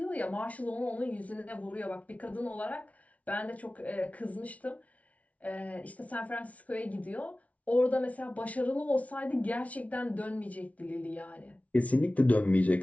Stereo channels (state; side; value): late; right; 0.067 ms